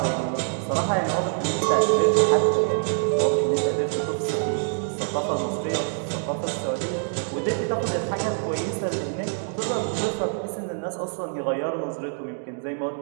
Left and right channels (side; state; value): left; silent; digital silence